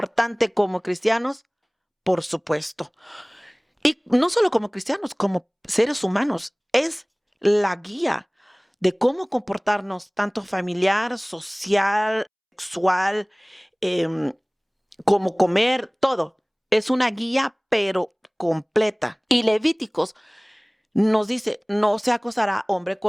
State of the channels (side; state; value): both; identical; correlation 1.00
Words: como cristianos, por supuesto. Y no solo como cristianos, como seres humanos. Es la guía de cómo comportarnos, tanto familiar, social, sexual, como comer, todo. Es una guía, pero completa. Y Levíticos nos dice, no se acostará hombre